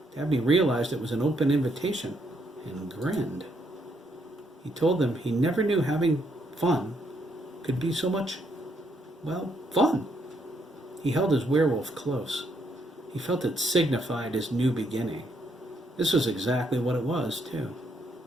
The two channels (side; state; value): both; normal; correlation 0.74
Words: Dabney realized it was an open invitation and grinned. He told them he never knew having fun could be so much, fun. He held his werewolf close. He felt it signified his new beginning. This was exactly what it was, too.